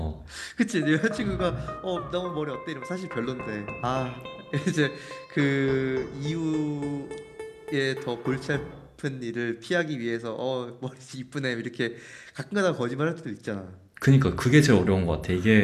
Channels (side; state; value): both; identical; correlation 1.00